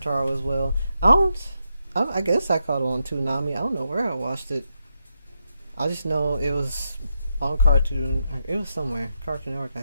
as well. I guess I caught it on Toonami. I don't know where I watched it. I just know it was on Cartoon. It was somewhere Cartoon Network,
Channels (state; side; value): inverted; both; correlation -0.83